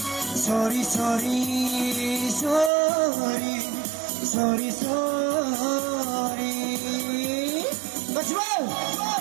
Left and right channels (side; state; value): left; drops out; at 2.7 s